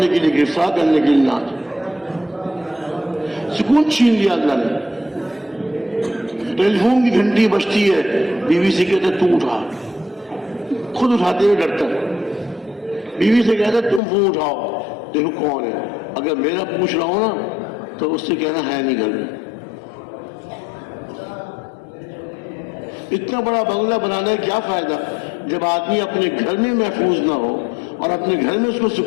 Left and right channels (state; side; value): drops out; right; at 14.0 s